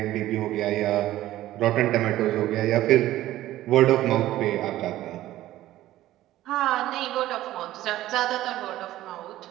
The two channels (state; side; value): quieter; left; 14.8 dB